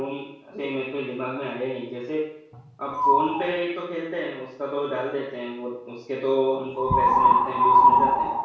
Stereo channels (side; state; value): both; identical; correlation 1.00